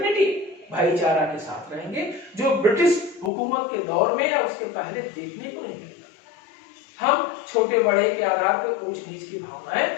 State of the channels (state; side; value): drops out; right; at 3.3 s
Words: भाईचारा के साथ रहेंगे, जो ब्रिटिश हुकूमत के दौर में या उसके पहले देखने को नहीं मिलता। हम छोटे बड़े के आधार पर ऊंच नीच की भावनाएं